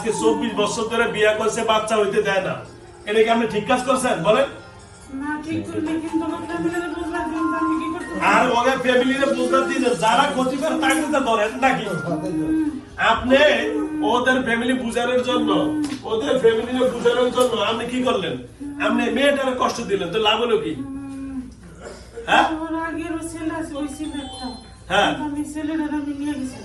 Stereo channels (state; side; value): identical; both; correlation 1.00